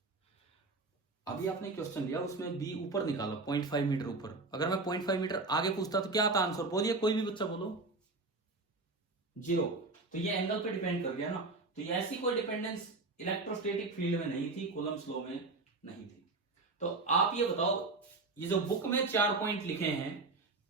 अभी आपने क्वेश्चन लिया, उसमें बी ऊपर निकाला 0.5 मीटर ऊपर, अगर मैं 0.5 मीटर आगे पूछता तो क्या आता आंसर, बोलिए कोई भी बच्चा बोलो, 0। तो ये एंगल पे डिपेंड कर गया ना। तो ये ऐसी कोई डिपेंडेंस इलेक्ट्रोस्टैटिक फील्ड में नहीं थी, कूलम्स लॉ में नहीं थी। तो आप ये बताओ, ये जो बुक में 4 पॉइंट लिखे हैं,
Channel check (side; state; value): left; quieter; 3.4 dB